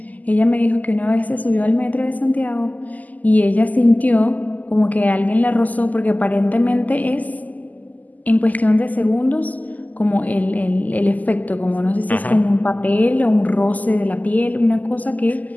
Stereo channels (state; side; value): late; right; 0.080 ms